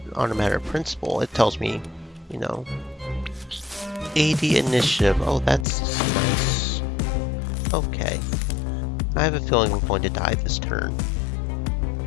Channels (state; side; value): drops out; right; at 5.7 s